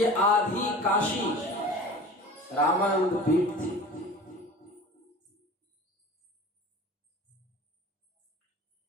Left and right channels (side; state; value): both; normal; correlation 0.39